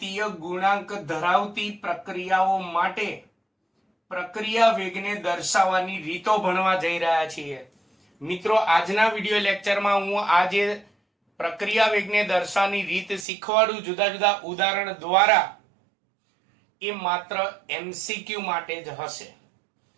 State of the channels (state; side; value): drops out; left; at 13.2 s